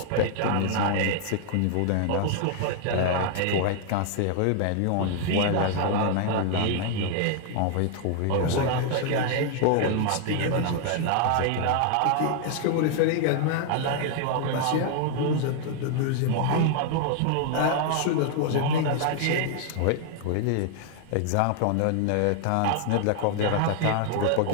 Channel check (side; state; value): both; different; correlation 0.00